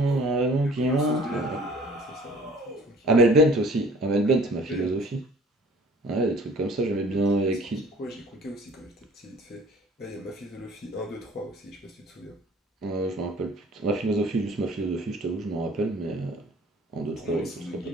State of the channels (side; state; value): both; normal; correlation 0.50